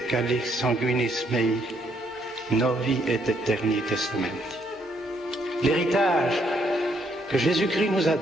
calix sanguinis mei, novi et eterni testamenti. L'héritage que Jésus-Christ nous a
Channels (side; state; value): both; normal; correlation 0.71